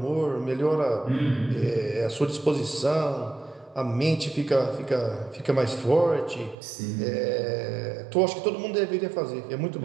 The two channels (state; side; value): drops out; left; at 6.6 s